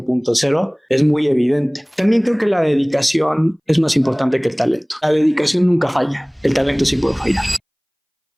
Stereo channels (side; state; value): both; identical; correlation 1.00